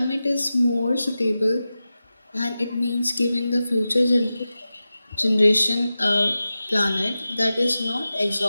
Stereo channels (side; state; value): both; inverted; correlation -0.94